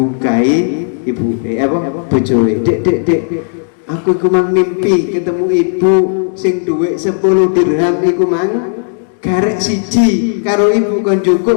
ibu bojoe. Dek, aku iku mang mimpi ketemu ibu sing duit 10 dirham iku mang garek siji karo ibu kon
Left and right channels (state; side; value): silent; right; digital silence